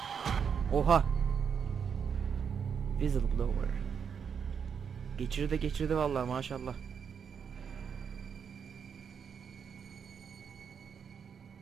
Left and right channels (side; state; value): left; quieter; 7.0 dB